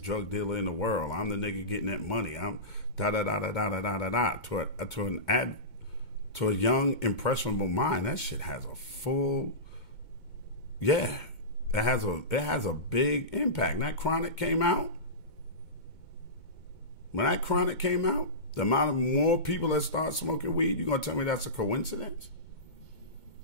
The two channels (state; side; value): late; right; 2.2 ms